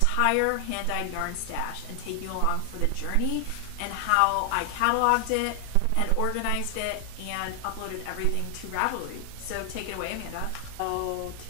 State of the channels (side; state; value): both; different; correlation 0.00